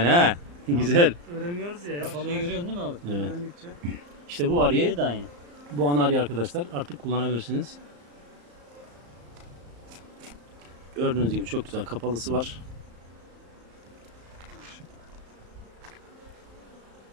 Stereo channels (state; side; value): late; left; 34 ms